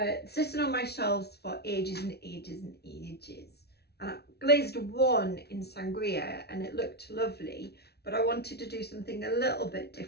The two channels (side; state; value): right; late; 0.48 ms